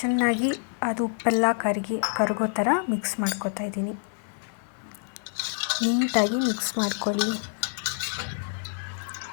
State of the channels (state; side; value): silent; right; digital silence